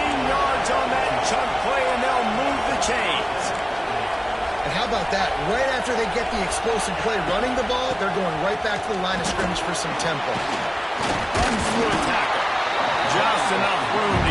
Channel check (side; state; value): both; identical; correlation 1.00